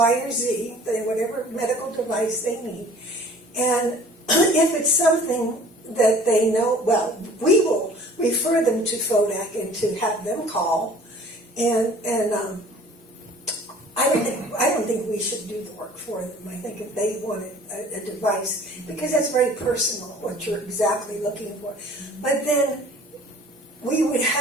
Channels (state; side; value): normal; both; correlation 0.49